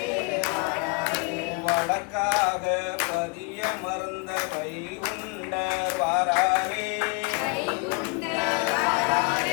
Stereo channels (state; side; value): quieter; right; 31.8 dB